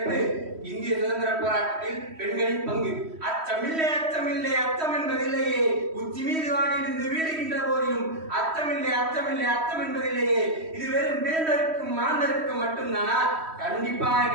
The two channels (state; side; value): late; left; 3.1 ms